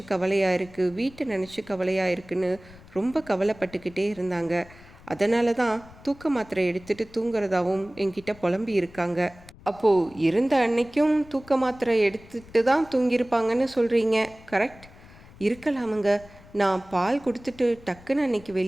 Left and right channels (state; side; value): noise; left; rumble, 22 dB below the sound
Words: கவலையாக இருக்குது, வீட்டை நினச்சி கவலையாக இருக்குன்னு ரொம்ப கவலைப்பட்டுக்கிட்டே இருந்தாங்க. அதனால தான் தூக்க மாத்திரை எடுத்துகிட்டு தூங்குறதாவும் என்கிட்ட புலம்பி இருக்காங்க. அப்போது இருந்த அன்னைக்கும் தூக்க மாத்திரை எடுத்துட்டு தான் தூங்கியிருப்பாங்கன்னு சொல்கிறீங்க, கரெக்ட்? இருக்கலாமுங்க. நான் பால் கொடுத்துட்டு டக்குன்னு அன்னைக்கு